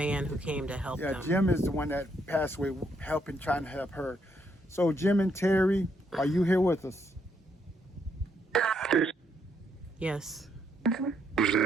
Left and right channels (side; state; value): both; normal; correlation 0.74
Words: who came to help them. Jim is the one that passed away, trying to help her. So, Jim and Terry, are you here with us? Yes.